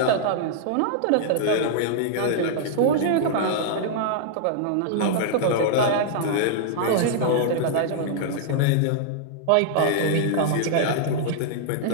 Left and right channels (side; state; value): both; different; correlation -0.01